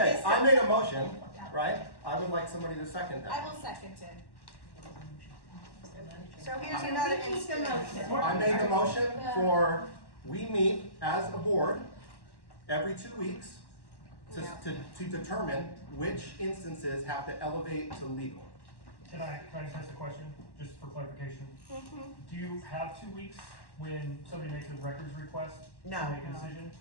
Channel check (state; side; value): late; right; 1.1 ms